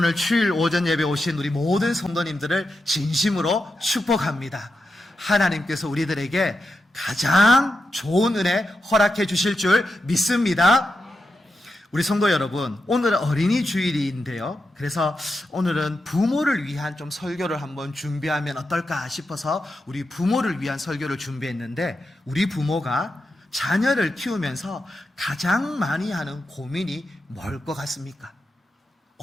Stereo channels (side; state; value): both; normal; correlation 0.87